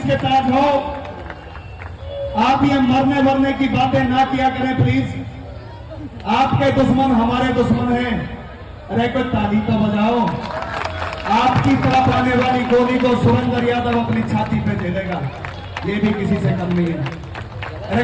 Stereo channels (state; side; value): identical; both; correlation 1.00